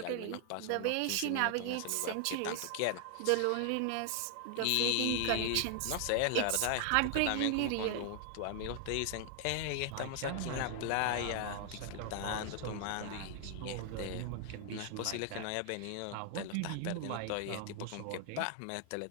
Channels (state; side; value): different; both; correlation 0.00